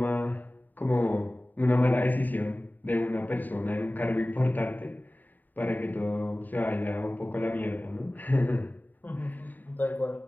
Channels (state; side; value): late; right; 0.087 ms